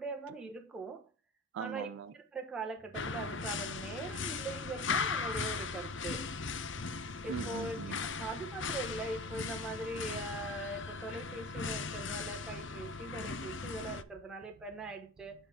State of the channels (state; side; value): normal; both; correlation 0.36